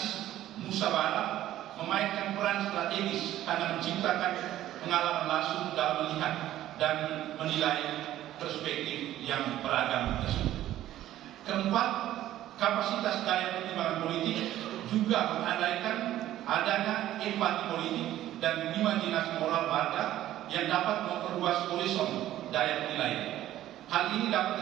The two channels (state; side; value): quieter; left; 13.4 dB